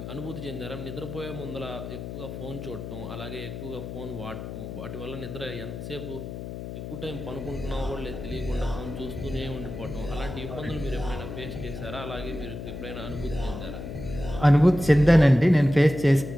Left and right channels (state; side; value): noise; left; hum, 8 dB below the sound